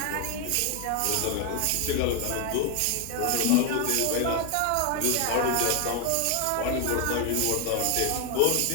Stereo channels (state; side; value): different; both; correlation 0.01